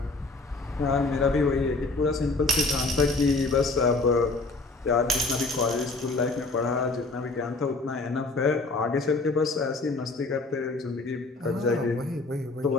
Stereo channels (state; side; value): quieter; right; 3.4 dB